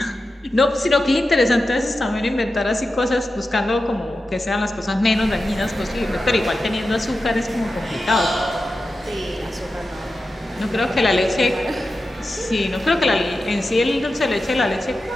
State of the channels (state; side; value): normal; both; correlation 0.92